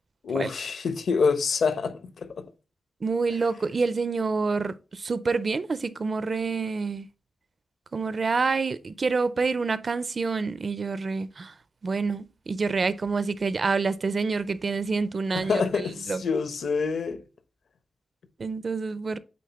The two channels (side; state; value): both; normal; correlation 0.87